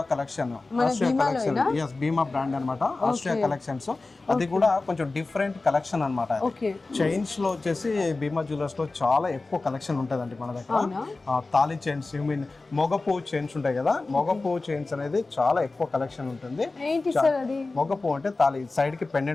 కలెక్షన్. భీమా బ్రాండ్ అన్నమాట. Austria collections. అది కూడా కొంచెం డిఫరెంట్ కలెక్షన్ అన్నమాట. చైన్స్ లో వచ్చేసి భీమా జ్యువెలర్స్ లో చాలా ఎక్కువ కలెక్షన్ ఉంటదండి మన దగ్గర. తాళి చైన్స్, మొగపూ చైన్స్ ఉంటాయి కదా, మొగపూ చైన్స్ అనేది చాలా ఎక్కువ కలెక్షన్ ఉంటుంది. మొగపూ అంటే తాళి సైడ్ కి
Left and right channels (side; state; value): right; quieter; 3.5 dB